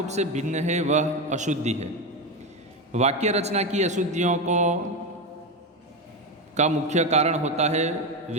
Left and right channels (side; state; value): both; normal; correlation 0.15